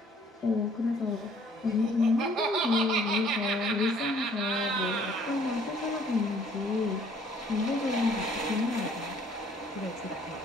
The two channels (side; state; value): both; normal; correlation 0.59